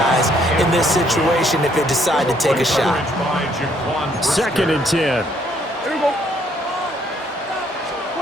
in this situation if they decide to take a shot. 2nd and 10.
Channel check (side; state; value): both; normal; correlation 0.67